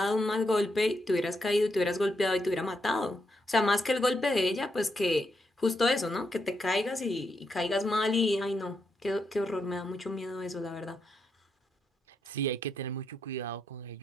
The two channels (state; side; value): normal; both; correlation 0.81